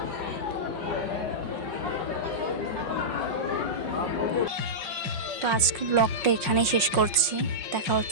তো আজকে ব্লগটা এখানেই শেষ করছি। দেখা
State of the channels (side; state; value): left; late; 5.6 ms